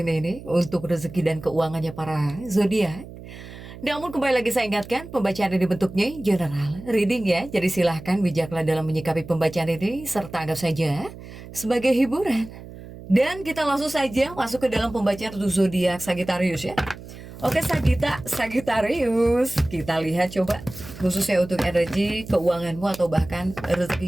ini untuk rezeki dan keuangannya para zodiak. Namun kembali lagi saya ingatkan, pembacaan ini bentuknya general reading ya. Jadi silahkan bijaklah dalam menyikapi pembacaan ini, serta anggap saja sebagai hiburan. Dan kita langsung saja masuk ke dalam pembacaan untuk zodiak Sagittarius ya. Oke Sagittarius, kita lihat coba khususnya untuk energi keuanganmu atau bahkan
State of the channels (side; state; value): right; noise; hum, 15 dB below the sound